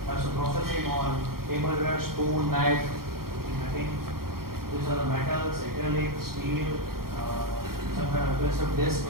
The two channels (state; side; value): late; left; 0.93 ms